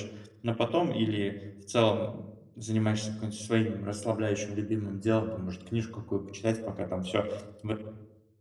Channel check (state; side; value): identical; both; correlation 1.00